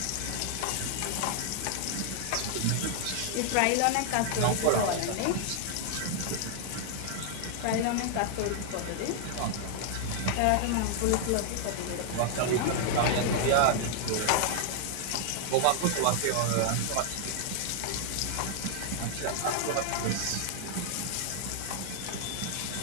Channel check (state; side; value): different; both; correlation 0.00